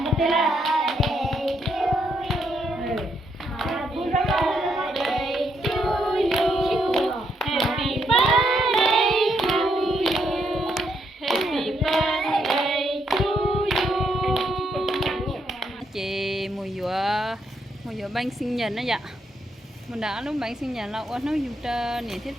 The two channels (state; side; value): normal; both; correlation 0.76